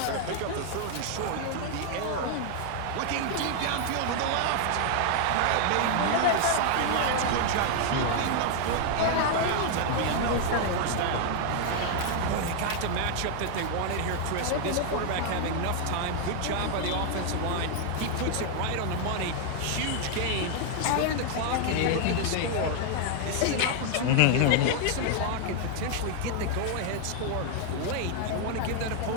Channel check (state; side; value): different; both; correlation 0.00